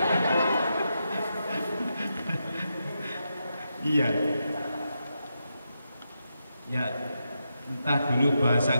Iya. Ya, entah dulu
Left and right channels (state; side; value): inverted; both; correlation -0.85